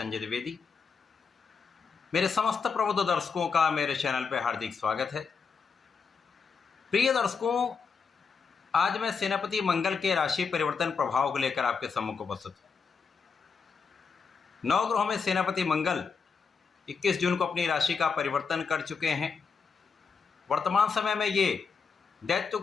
द्विवेदी। मेरे समस्त प्रबुद्ध दर्शकों का मेरे चैनल पर हार्दिक स्वागत है। प्रिय दर्शकों, आज मैं सेनापति मंगल के राशि परिवर्तन प्रभाव को लेकर आपके सम्मुख उपस्थित हूँ। नवग्रहों में सेनापति मंगल 21 जून को अपनी राशि का परिवर्तन कर चुके हैं। वर्तमान समय में ये दैत्य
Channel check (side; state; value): right; quieter; 5.5 dB